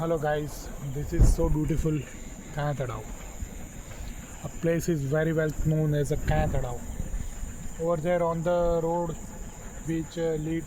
guys, this is so beautiful Kanatadao. A place is very well known as a Kanatadao. Over there on the road which lead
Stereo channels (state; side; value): identical; both; correlation 1.00